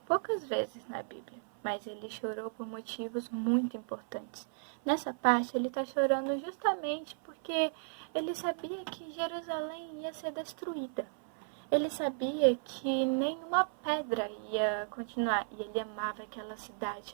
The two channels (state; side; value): silent; left; 55 dB below the other